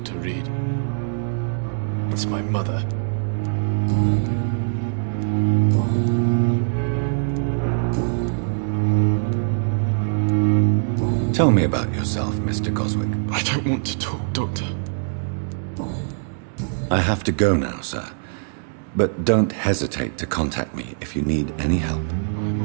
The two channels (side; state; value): left; silent; digital silence